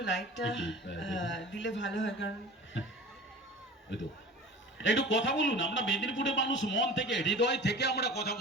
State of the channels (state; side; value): normal; both; correlation 0.39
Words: লাইটটা দেখুন। দিলে ভালো হয়, কারণ ওই তো একটু কথা বলুন। আমরা মেদিনীপুরের মানুষ, মন থেকে হৃদয় থেকে আমরা কথা